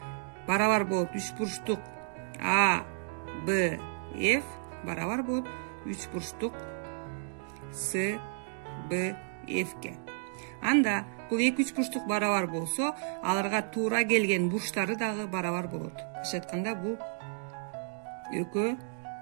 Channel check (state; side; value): silent; left; digital silence